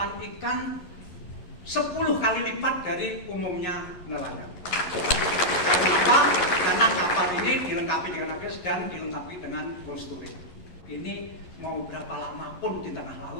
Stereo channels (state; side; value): late; right; 11 ms